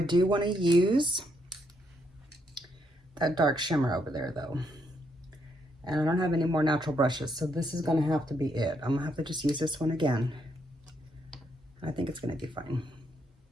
want to use that dark shimmer over there though. And I don't have any more natural brushes, so this is gonna have to be it. I'm gonna have to just use this one again. I think it's gonna be fine.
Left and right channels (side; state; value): both; normal; correlation 0.76